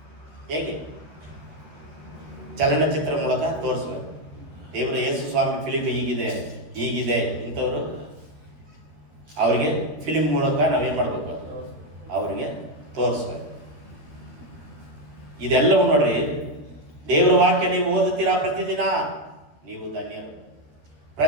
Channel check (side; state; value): left; late; 13 ms